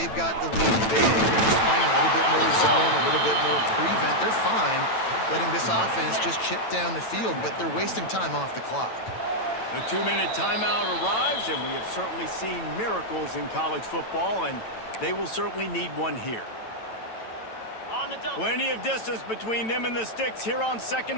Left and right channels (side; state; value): right; late; 9.0 ms